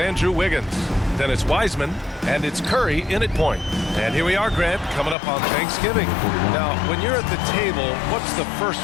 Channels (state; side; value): drops out; right; at 5.2 s